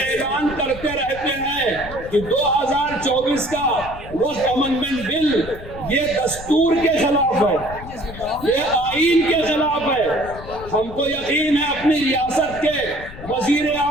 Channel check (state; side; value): noise; left; rumble, 14 dB below the sound